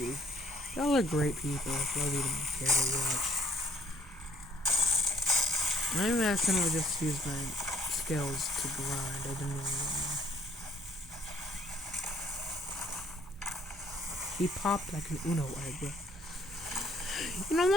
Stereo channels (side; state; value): both; normal; correlation 0.62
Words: Y'all are great people if y'all even care to watch. I accidentally just used my skills to grind. I didn't even know. He popped like an Uno egg. You know,